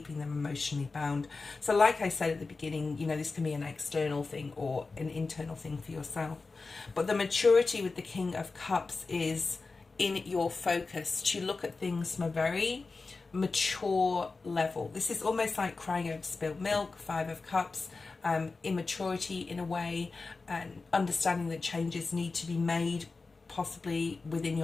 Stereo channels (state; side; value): quieter; right; 4.0 dB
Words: them emotionally bound. So like I said at the beginning, you know, this can be an external thing or an internal thing for yourself. But the maturity with the King of Cups is in your focus to look at things from a very mature level. This is almost like crying over spilled milk, Five of Cups, immaturity in a way, and understanding that changes need to be made possibly within